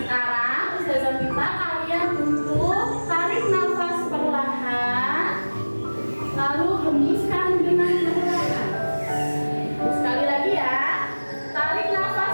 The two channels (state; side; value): inverted; both; correlation -1.00